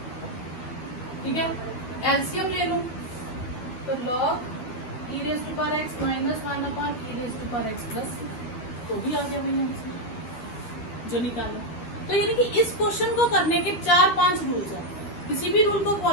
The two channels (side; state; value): right; late; 12 ms